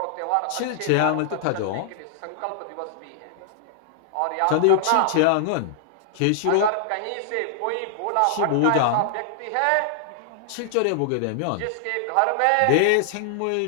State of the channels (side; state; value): both; different; correlation -0.01